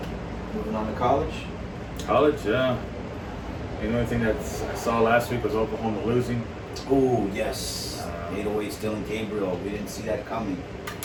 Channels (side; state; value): both; identical; correlation 1.00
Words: Moving on to college. College, yeah. The only thing that I saw last week was Oklahoma losing. Oh, yes. 808's Dylan Gabriel. We didn't see that coming.